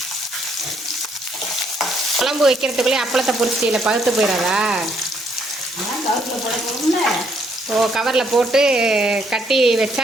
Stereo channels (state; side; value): normal; both; correlation 0.70